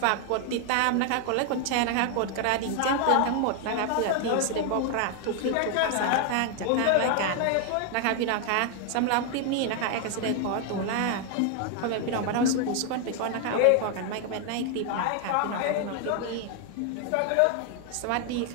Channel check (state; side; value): different; both; correlation 0.00